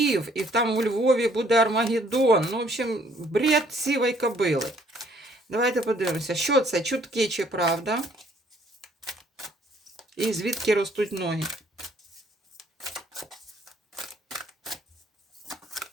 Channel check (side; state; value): both; normal; correlation 0.63